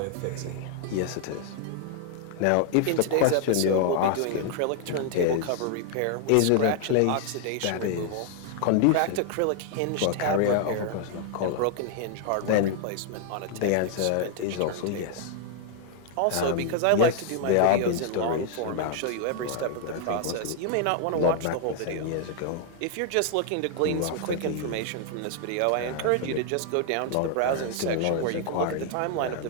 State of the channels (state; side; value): different; both; correlation 0.00